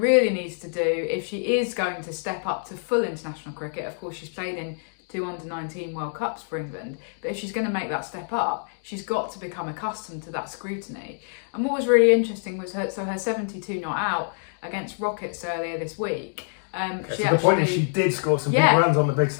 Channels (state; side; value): silent; right; digital silence